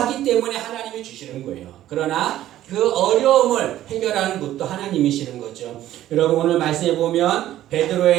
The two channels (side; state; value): left; quieter; 13.3 dB